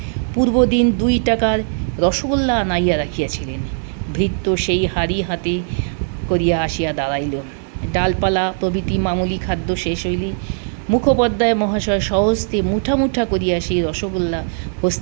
পূর্বদিন 2 টাকার রসগোল্লা আনাইয়া রাখিয়াছিলেন। ভৃত্য সেই হাড়ি হাতে করিয়া আসিয়া দাঁড়াইল। ডালপালা প্রভৃতি মামুলি খাদ্য শেষ হইলে মুখোপাধ্যায় মহাশয় সহস্তে মুঠা মুঠা করিয়া সেই রসগোল্লা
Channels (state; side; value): silent; left; 67 dB below the other